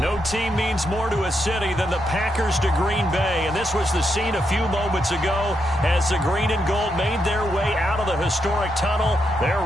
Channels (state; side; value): normal; both; correlation 0.81